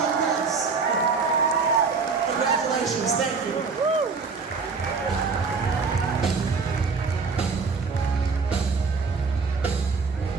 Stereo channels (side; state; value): left; quieter; 4.8 dB